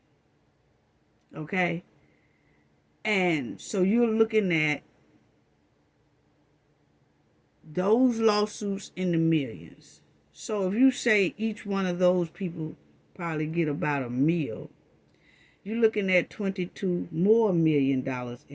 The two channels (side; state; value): both; identical; correlation 1.00